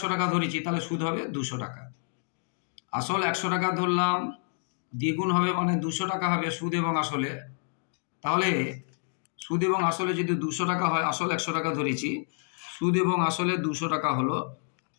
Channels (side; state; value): right; silent; 59 dB below the other